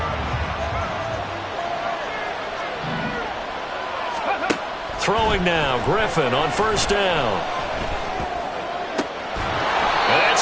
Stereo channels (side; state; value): both; identical; correlation 1.00